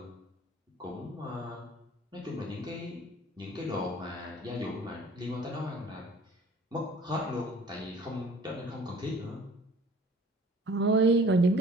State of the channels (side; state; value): both; normal; correlation 0.50